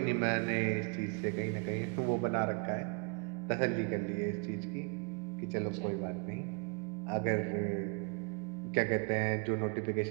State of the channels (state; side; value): quieter; left; 33.7 dB